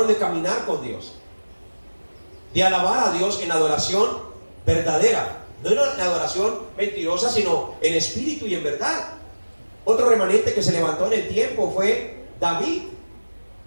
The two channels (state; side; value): inverted; both; correlation -1.00